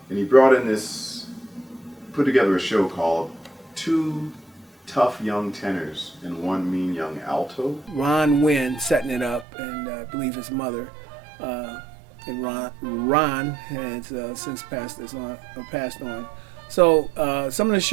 and he brought in put together a show called Two Tough Young Tenors and One Mean Young Alto. Ron Wynn setting it up, and I believe his mother, and Ron has since passed on. So some of the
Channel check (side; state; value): left; drops out; at 9.5 s